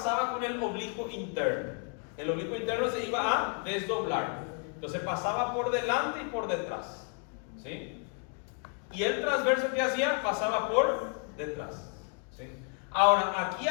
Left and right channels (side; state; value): right; quieter; 39.9 dB